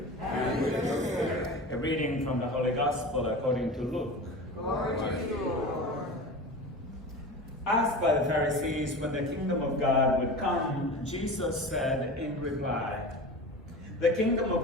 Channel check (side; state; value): both; normal; correlation 0.32